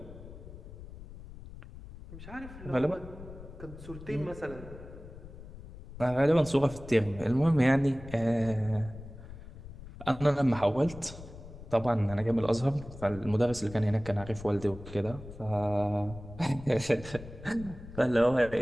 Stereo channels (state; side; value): noise; left; rumble, 15 dB below the sound